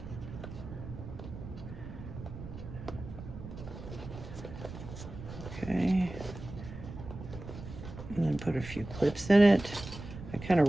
Okay. And then put a few clips in it. I kind of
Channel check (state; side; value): noise; right; rumble, 11 dB below the sound